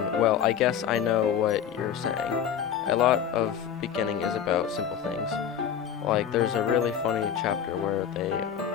well, I guess I know what you're saying. A lot of beginning is about simple things. Like, there's a really funny chapter where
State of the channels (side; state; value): right; quieter; 8.5 dB